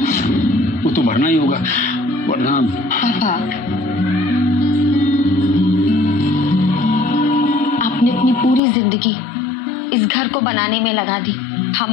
वो तो भरना ही होगा, वरना। पापा, आपने अपनी पूरी जिंदगी इस घर को बनाने में लगा दी।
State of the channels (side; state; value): right; drops out; at 8.6 s